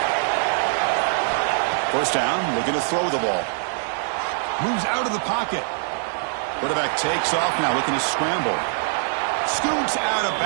First down, looking to throw the ball. Moves out of the pocket. Quarterback takes off now, looking to scramble. Scoots out of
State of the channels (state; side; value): silent; left; digital silence